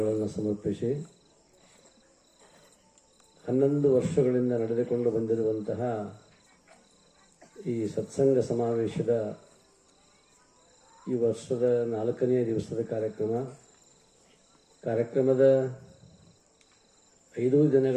ಸಮರ್ಪಿಸಿ 11 ವರ್ಷಗಳಿಂದ ನಡೆದುಕೊಂಡು ಬಂದಿರುವಂತಹ ಈ ಸತ್ಸಂಗ ಸಮಾವೇಶದ ಈ ವರ್ಷದ 4ನೇ ದಿವಸದ ಕಾರ್ಯಕ್ರಮದ 5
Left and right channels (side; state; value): both; identical; correlation 1.00